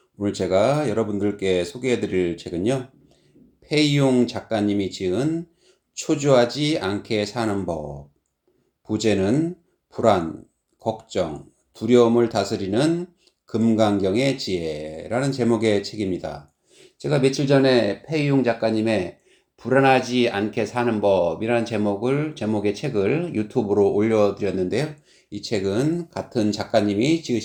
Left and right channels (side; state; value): both; identical; correlation 1.00